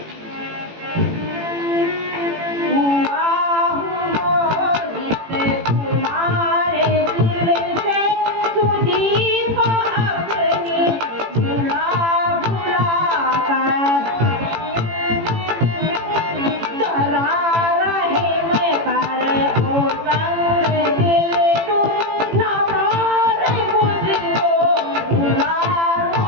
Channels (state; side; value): late; left; 18 ms